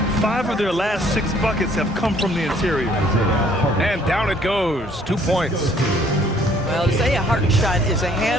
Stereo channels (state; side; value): normal; both; correlation 0.61